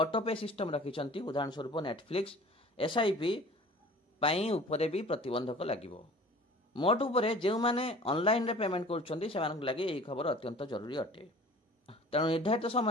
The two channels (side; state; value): both; normal; correlation 0.46